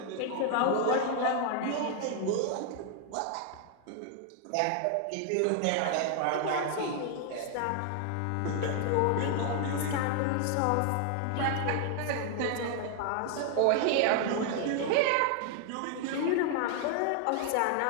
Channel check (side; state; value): both; different; correlation 0.00